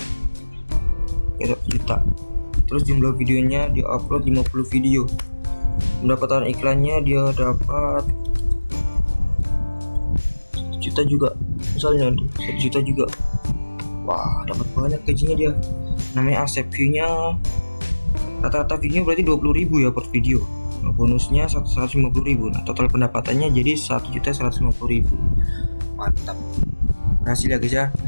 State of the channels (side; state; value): both; inverted; correlation -1.00